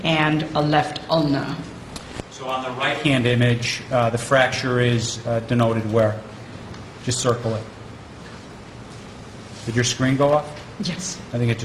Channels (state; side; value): identical; both; correlation 1.00